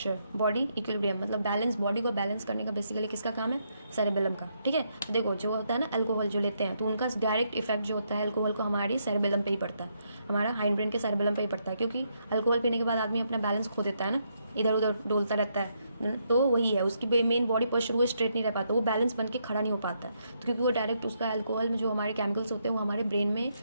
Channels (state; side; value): inverted; both; correlation -0.77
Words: बॉडी इक्विलिब्रियम, मतलब बैलेंस, बॉडी को बैलेंस करने का बेसिकली किसका काम है, सेरेबेलम का, ठीक है। तो देखो जो होता है ना अल्कोहल जो लेते हैं तो उनका डायरेक्ट इफेक्ट जो होता है अल्कोहल को हमारी सेरेबेलम पे ही पड़ता है, हमारा हाइंड ब्रेन के सेरेबेलम पे ही पड़ता है, क्योंकि अल्कोहल पीने के बाद आदमी अपना बैलेंस खो देता है ना, इधर उधर डोलता रहता है, तो वही है उसकी मेन बॉडी पोस्चर, वो स्ट्रेट नहीं रह पाता, वो बैलेंस बन के खड़ा नहीं हो पाता है, तो क्योंकि वो डायरेक्ट उसका अल्कोहल में जो हमारे केमिकल्स होते हैं वो हमारे ब्रेन में